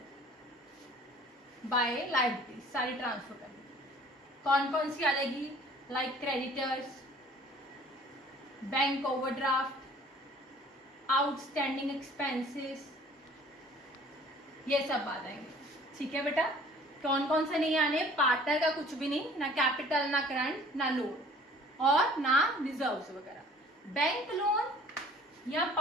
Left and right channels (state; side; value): normal; both; correlation 0.51